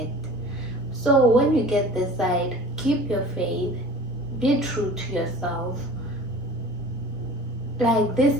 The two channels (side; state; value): both; normal; correlation 0.42